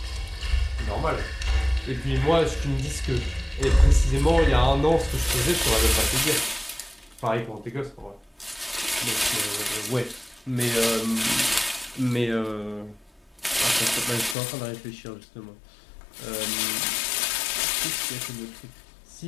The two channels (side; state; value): right; drops out; at 14.4 s